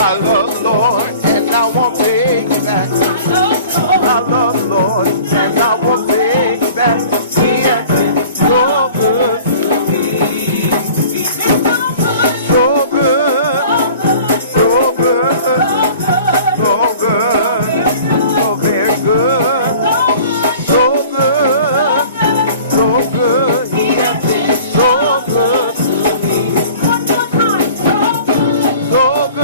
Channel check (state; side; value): inverted; both; correlation -0.46